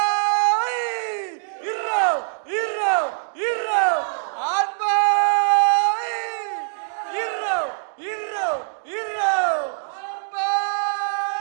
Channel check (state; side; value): silent; left; digital silence